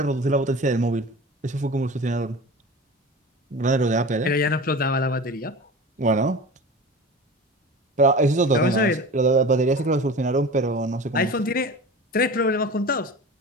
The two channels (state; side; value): normal; both; correlation 0.35